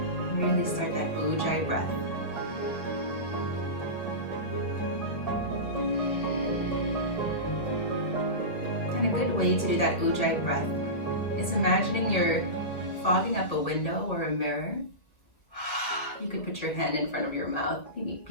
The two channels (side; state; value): right; late; 1.9 ms